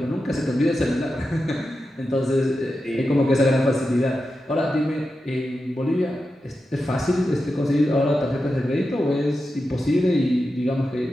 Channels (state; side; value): normal; both; correlation 0.90